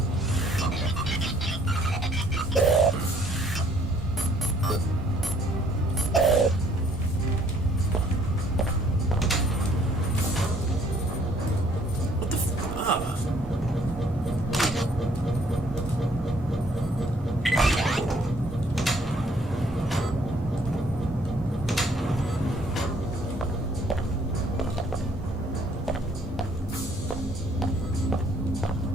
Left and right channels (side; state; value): both; normal; correlation 0.62